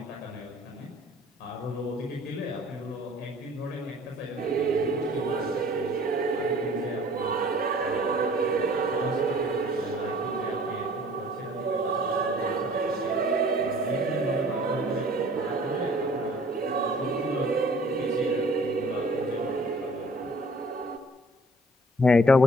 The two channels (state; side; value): normal; both; correlation 0.52